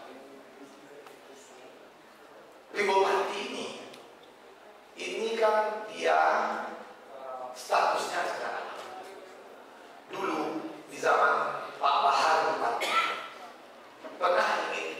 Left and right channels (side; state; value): both; identical; correlation 1.00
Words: Di Bupati ini kan dia statusnya sekarang. Dulu di zaman Pak Bahar Bupati pernah ingin